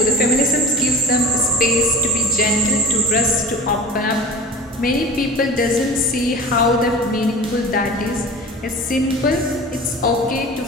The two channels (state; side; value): normal; both; correlation 0.36